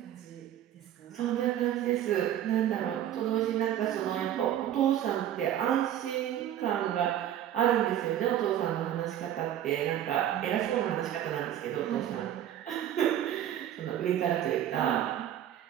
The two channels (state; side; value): quieter; left; 11.2 dB